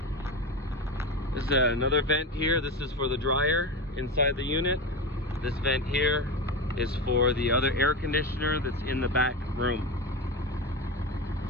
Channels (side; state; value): both; normal; correlation 0.21